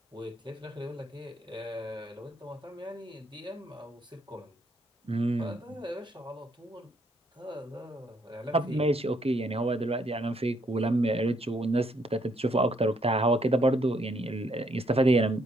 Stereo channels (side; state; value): both; normal; correlation 0.71